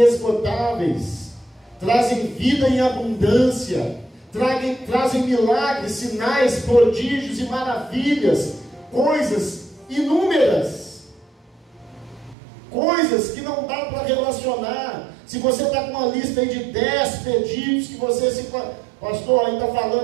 trazem vida em abundância, trazem milagres, sinais, prodígios e maravilhas, coisas inúmeras, coisas que não dá para relacionar. Se você está com uma lista aí de 10 pedidos que você se... Pastor, aí está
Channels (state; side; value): drops out; left; at 12.4 s